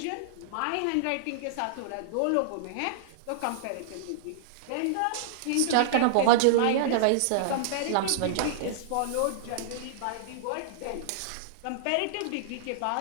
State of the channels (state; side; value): different; both; correlation -0.01